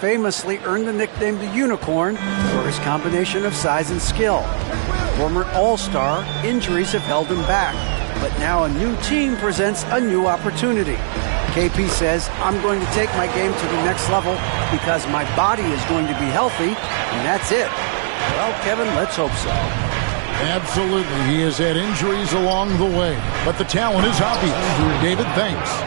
earned the nickname the Unicorn for his combination of size and skill. Former All-Star, injuries have held him back, but now a new team presents a new opportunity. KP says, I'm going to take my game to the next level because my body is going to be healthy, and that's it. Well, Kevin, let's hope so. Absolutely. He has had injuries along the way, but the talent is obvious. David, thanks.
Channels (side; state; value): left; silent; 64 dB below the other